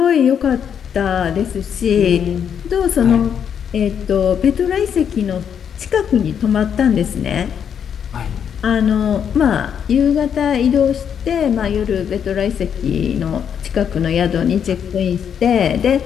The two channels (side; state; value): right; quieter; 8.1 dB